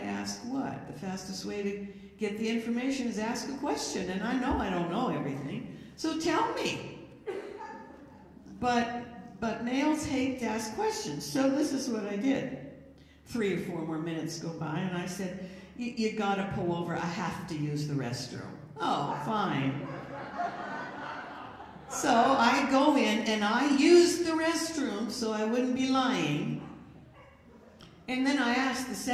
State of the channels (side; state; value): both; identical; correlation 1.00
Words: ask what. The fastest way to get the information is ask a question. And I know I don't know everything, so tell me. But males hate to ask questions, so this is what I did. 3 or 4 more minutes go by, and I said, you gotta pull over. I have to use the restroom. Oh, fine. So I go in and I use the restroom so I wouldn't be lying. And then I asked the